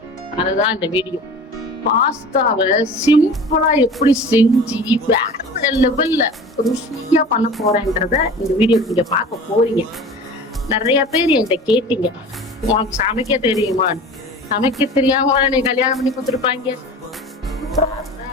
அதுதான் இந்த வீடியோ. பாஸ்தாவை சிம்பிளா எப்படி செஞ்சு வேற லெவல்ல ருசியா பண்ண போறேன்றத இந்த வீடியோ நீங்க பார்க்க போறீங்க. நிறைய பேர் என்கிட்ட கேட்டீங்க, உனக்கு சமைக்க தெரியுமா? சமைக்க தெரியாம நீ கல்யாணம் பண்ணி கொடுத்துருப்பாங்க.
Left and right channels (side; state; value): both; normal; correlation 0.39